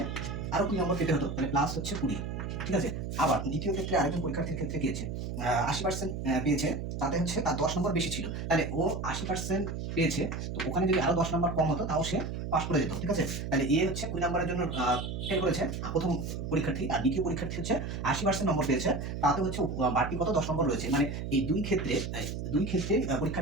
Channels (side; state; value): right; noise; hum, 5 dB below the sound